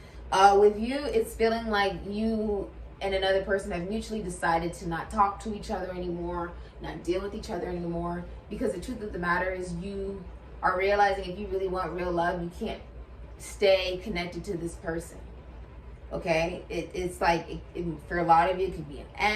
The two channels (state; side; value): identical; both; correlation 1.00